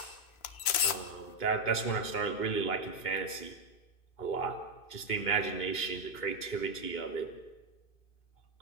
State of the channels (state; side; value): late; right; 2.9 ms